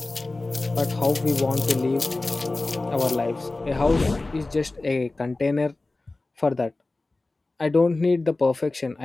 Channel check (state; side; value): quieter; right; 3.2 dB